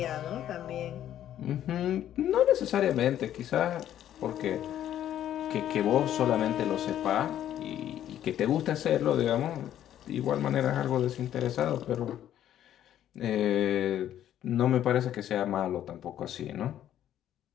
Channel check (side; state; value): right; quieter; 11.3 dB